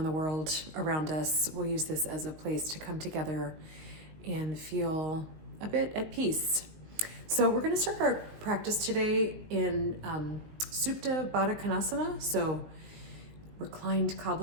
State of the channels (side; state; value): left; late; 19 ms